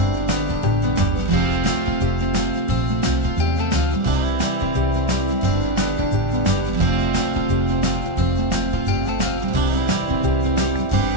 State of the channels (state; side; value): late; left; 1.4 ms